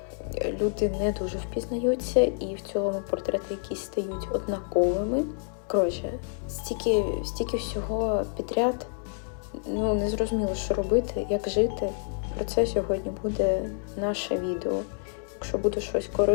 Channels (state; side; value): silent; right; 59 dB below the other